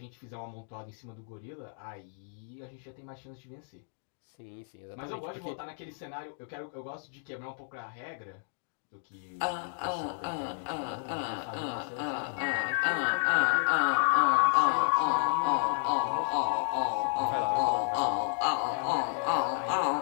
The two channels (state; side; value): silent; right; digital silence